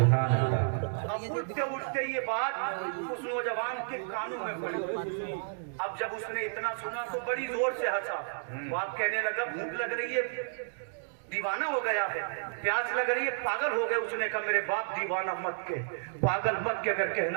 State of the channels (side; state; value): left; silent; digital silence